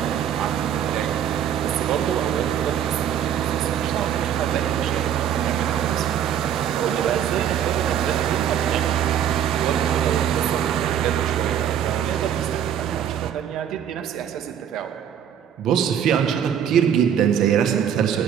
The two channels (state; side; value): quieter; left; 9.3 dB